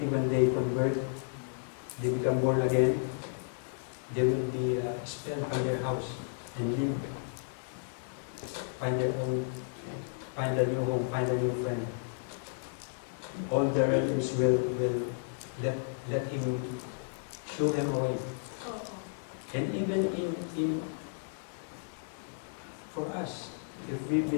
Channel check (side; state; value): right; silent; digital silence